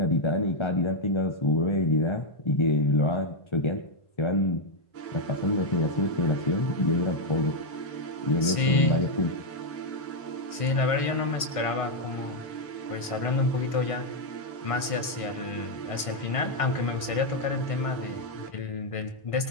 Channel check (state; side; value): late; right; 1.6 ms